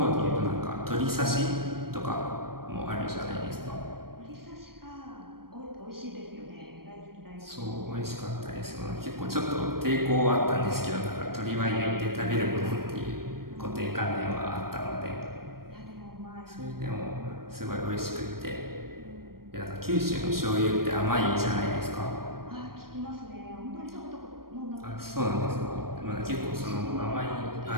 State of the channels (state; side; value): late; left; 0.93 ms